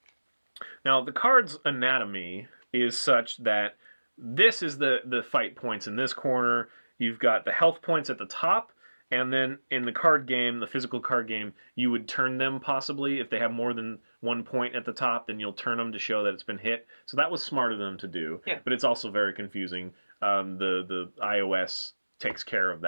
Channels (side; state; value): both; inverted; correlation -1.00